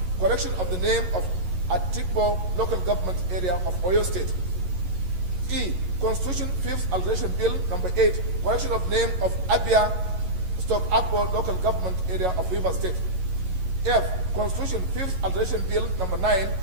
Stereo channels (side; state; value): left; late; 11 ms